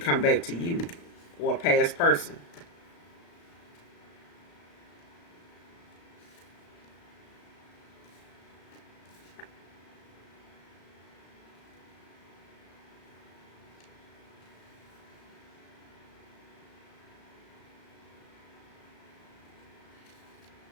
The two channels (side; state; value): right; late; 35 ms